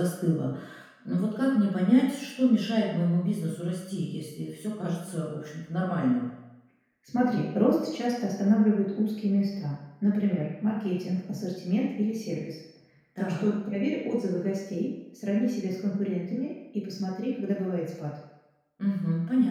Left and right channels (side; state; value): both; identical; correlation 1.00